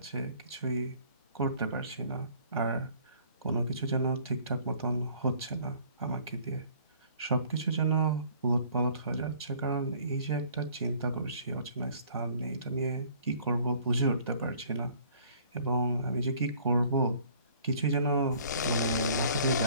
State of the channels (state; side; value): inverted; both; correlation -0.55